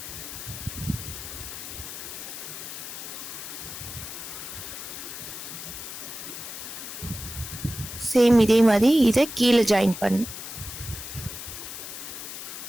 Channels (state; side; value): noise; left; hiss, 9 dB below the sound